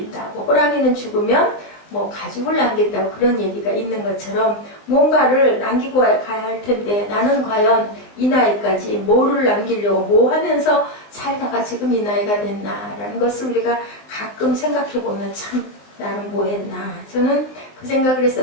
호랑이는 죽으면 뭐 가죽을 남긴다고, 그런 얘기가 있는 것처럼 뭔가를 남기고 가야 할 텐데, 나는 과연 이 나이까지 뭐를 남기려고 뭐 하면서 살다가 지금 이 나이가 됐나라는 것을 우리가 가끔 생각해 보면 참 나는 뭐 했나. 저는 그 생각을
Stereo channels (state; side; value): late; right; 19 ms